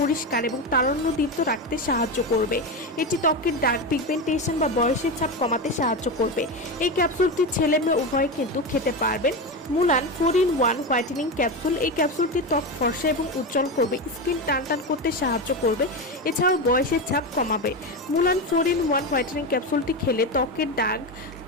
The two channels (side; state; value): both; normal; correlation 0.17